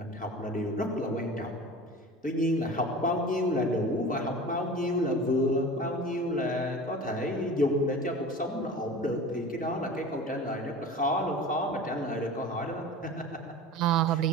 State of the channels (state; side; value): normal; both; correlation 0.36